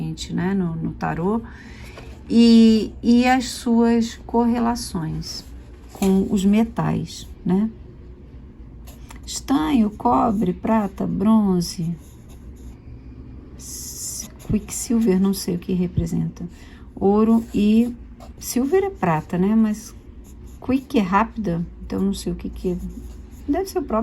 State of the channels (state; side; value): identical; both; correlation 1.00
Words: né? No tarô. E as suas correlações com os metais, né? Estanho, cobre, prata, bronze, quicksilver, não sei o que representa, ouro e silver é prata, né? Mas quick é rápida, então não sei o que é. Deve ser o